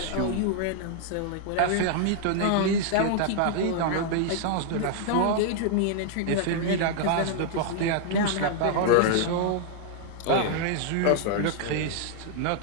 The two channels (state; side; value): different; both; correlation 0.00